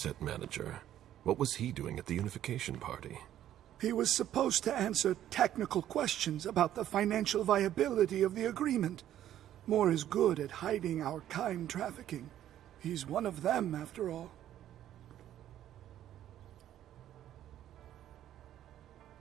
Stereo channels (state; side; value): quieter; left; 11.8 dB